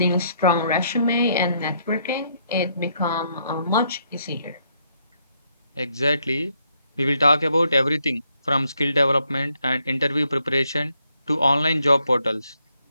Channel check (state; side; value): inverted; both; correlation -0.74